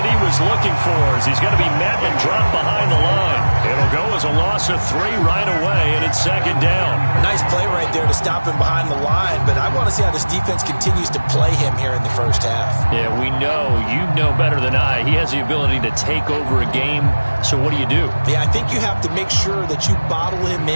he was looking for as he's going to be met and dropped behind the line. It'll go as a loss of 3 right away, and it's second down. Nice play right there to stop him behind the line, but I want to see how this defense continues to play him here in the first half. Yeah, we know. You know better than I. He has the ability to take over a game, so what do you do? Yeah, I think you have to make sure that you bottle him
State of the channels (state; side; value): inverted; both; correlation -1.00